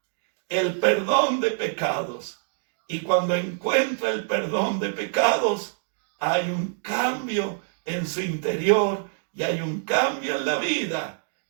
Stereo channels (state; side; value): silent; left; digital silence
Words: el perdón de pecados. Y cuando encuentra el perdón de pecados, hay un cambio en su interior y hay un cambio en la vida